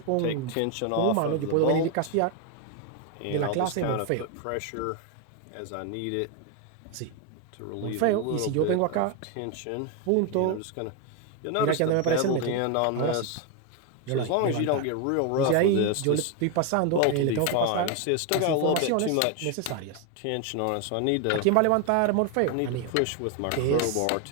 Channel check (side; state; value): both; different; correlation 0.01